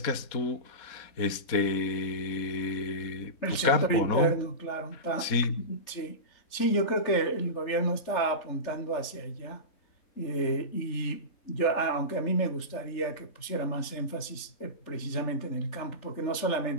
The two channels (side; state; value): right; late; 3.4 ms